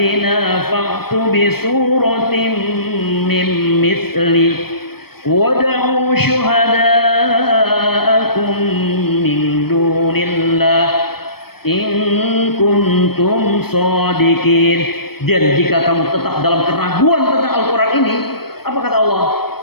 fa'tu bi suratin min mithli wad'u syuhada'akum min dunillah in kuntum shadiqin. Dan jika kamu tetap dalam keraguan tentang Al-Quran ini, apa kata Allah?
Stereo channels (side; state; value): right; late; 0.96 ms